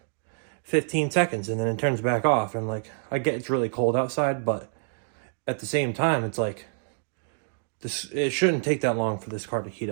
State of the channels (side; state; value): left; silent; digital silence